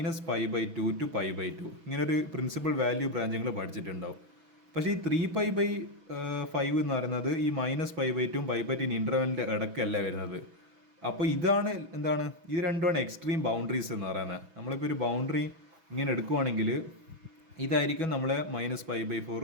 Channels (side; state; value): left; late; 6.1 ms